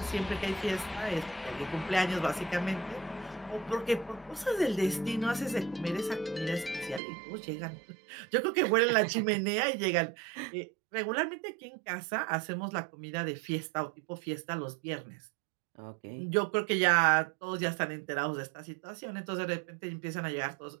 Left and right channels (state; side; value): drops out; left; at 7.0 s